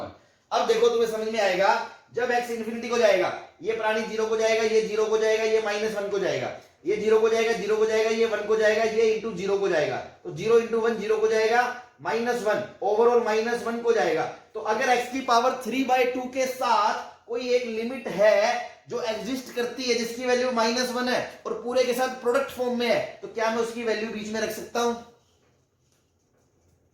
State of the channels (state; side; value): identical; both; correlation 1.00